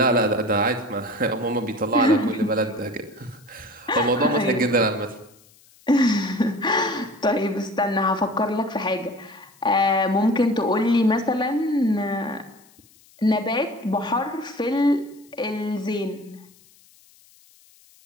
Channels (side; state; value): left; noise; hiss, 28 dB below the sound